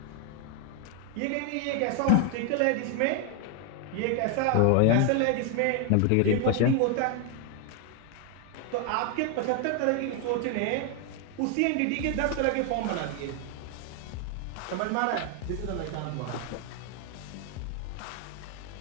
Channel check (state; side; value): different; both; correlation 0.01